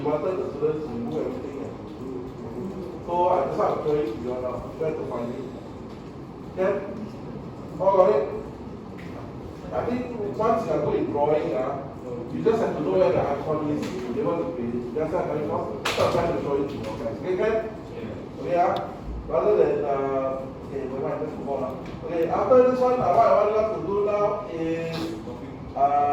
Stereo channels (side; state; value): both; identical; correlation 1.00